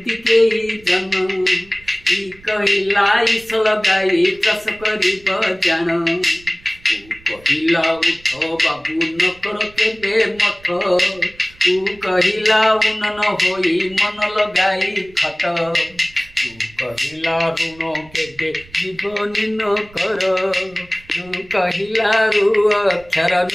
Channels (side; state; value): right; noise; rumble, 24 dB below the sound